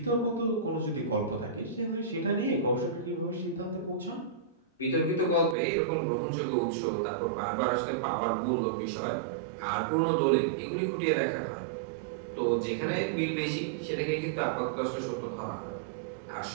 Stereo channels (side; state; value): left; drops out; at 5.6 s